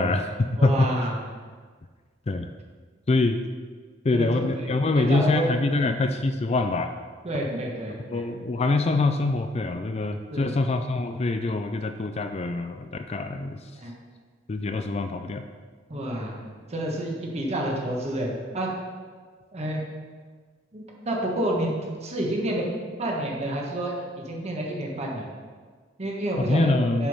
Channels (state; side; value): normal; both; correlation 0.68